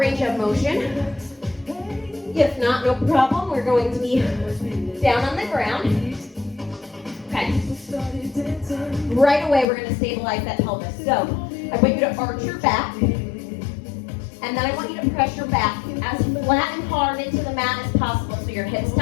of motion. If not, no problem. We're going to be down on the ground. Okay. Right away, we're going to stabilize that pelvis. So, I want you to arch your back. And then I want you to press your back as flat and hard into the mat as possible. So your hips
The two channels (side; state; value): right; drops out; at 9.7 s